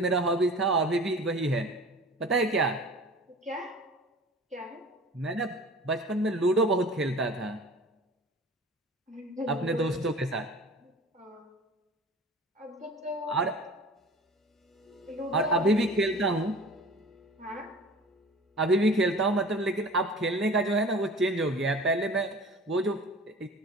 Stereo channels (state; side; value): normal; both; correlation 0.41